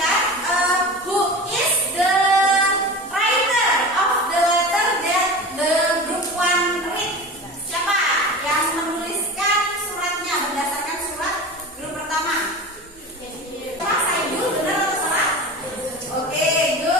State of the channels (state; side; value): normal; both; correlation 0.32